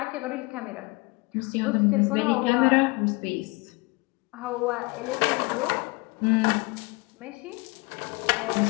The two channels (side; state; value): right; quieter; 26.3 dB